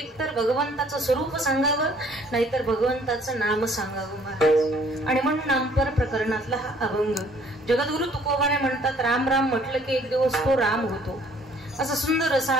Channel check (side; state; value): both; normal; correlation 0.59